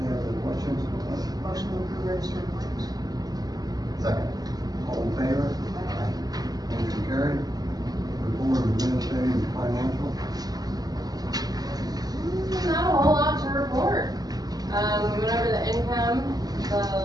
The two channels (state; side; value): late; left; 0.19 ms